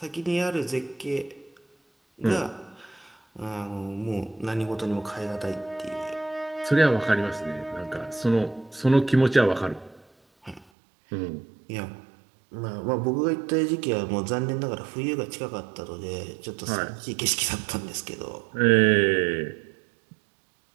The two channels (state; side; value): drops out; left; at 10.7 s